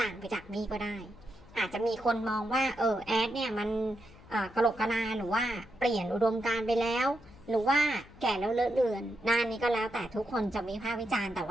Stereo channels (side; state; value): left; noise; hum, 22 dB below the sound